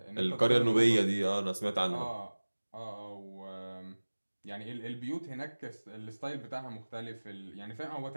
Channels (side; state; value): both; inverted; correlation -1.00